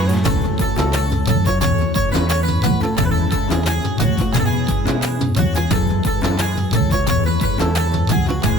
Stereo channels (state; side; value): normal; both; correlation 0.59